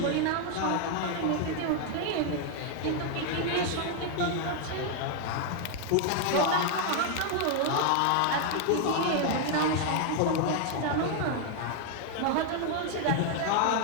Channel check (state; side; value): different; both; correlation 0.00